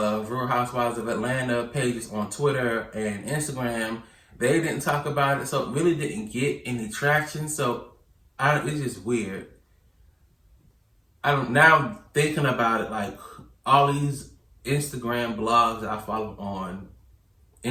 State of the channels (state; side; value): identical; both; correlation 1.00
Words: Real Housewives of Atlanta pages on Twitter and Instagram. They didn't talk about it, so it really didn't get any traction. So it's just weird. Now thinking about it, like all these Instagram blogs that I follow on